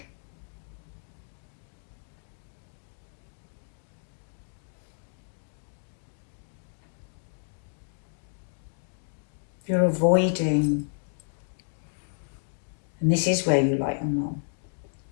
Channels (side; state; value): right; silent; digital silence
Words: You're avoiding, and this is where you like your mum,